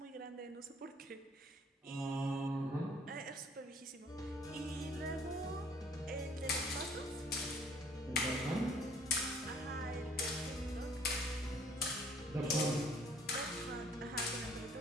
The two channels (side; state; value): both; normal; correlation 0.58